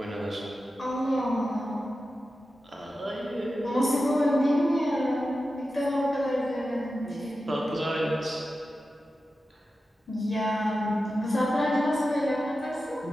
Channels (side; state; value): both; normal; correlation 0.92